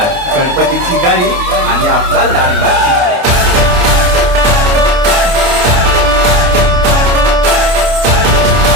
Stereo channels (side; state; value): left; late; 29 ms